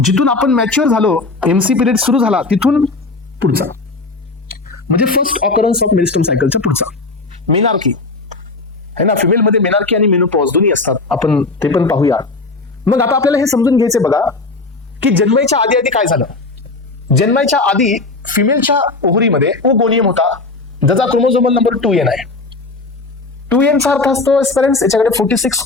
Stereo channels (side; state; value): right; quieter; 3.5 dB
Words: आपण मॅच्युअर झालो, एमसी पिरियड सुरू झाला तिथून पुढचा, म्हणजे फर्स्ट ऑकरन्स ऑफ मेरिस्टम सायकलचा पुढचा. मेनार्की है ना, फिमेल मध्ये मेनार्की आणि मेनोपॉज दोन्ही असतात, आपण ते पण पाहूया. मग आता आपल्याला हे समजून घ्यायचे बघा की जन्माच्या आधी आधी काय झालं. जन्माच्या आधी फिमेलच्या ओव्हरीमध्ये ओगोनियम होता, ज्याचा क्रोमोझोमल नंबर 2n आहे. 2n चा अर्थ असतो पेरेंट्स, याच्याकडे 46